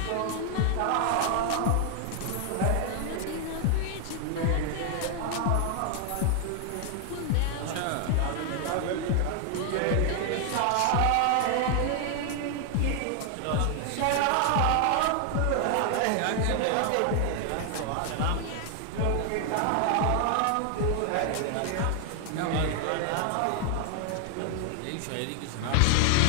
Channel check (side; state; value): both; different; correlation 0.00